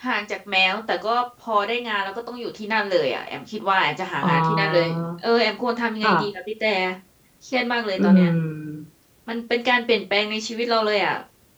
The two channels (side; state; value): both; identical; correlation 1.00